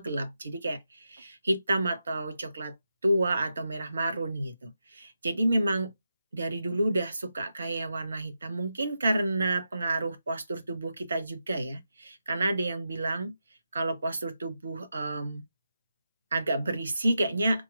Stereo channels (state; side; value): inverted; both; correlation -0.87